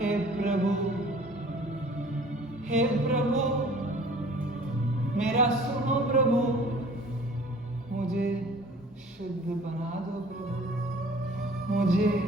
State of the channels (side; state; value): both; normal; correlation 0.49